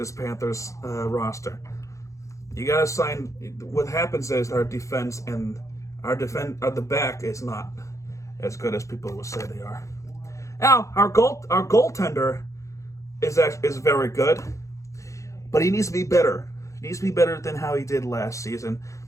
Panthers roster? You gotta sign. What happens is our defense and our the back is not as good as people will say they are. Now, our goaltender is very good, but he needs to be better. He needs to be better than how he did last season,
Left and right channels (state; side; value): late; right; 0.15 ms